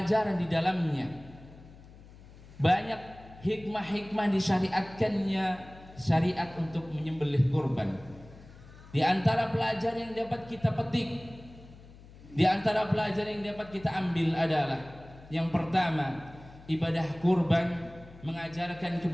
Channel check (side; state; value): left; noise; hum, 20 dB below the sound